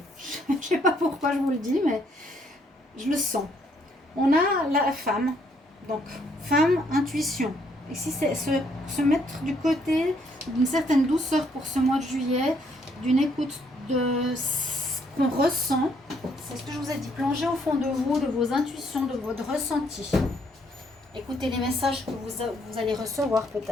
Je ne sais pas pourquoi je vous le dis, mais je le sens. On a la femme. Donc, femme, intuition. Et si c'est se mettre du côté d'une certaine douceur pour ce mois de juillet, d'une écoute de qu'on ressent, c'est ce que je vous ai dit, plongez au fond de vous, de vos intuitions, de votre ressenti. Écoutez les messages que vous allez recevoir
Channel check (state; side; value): normal; both; correlation 0.69